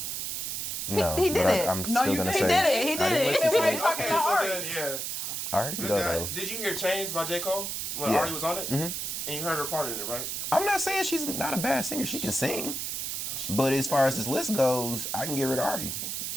No, he did it. I'm still gonna say he did it. He did it. Okay, so then, yeah. Alright, go though. Did you hear Change by J. Cole when Ari was on it? And you heard her part in it, right? I'm not saying she's not a bad singer. She can sing. But as far as this list goes, I can give her to Ari.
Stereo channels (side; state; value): right; noise; hiss, 3 dB below the sound